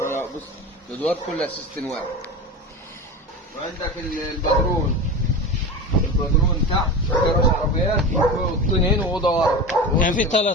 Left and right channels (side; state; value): both; normal; correlation 0.27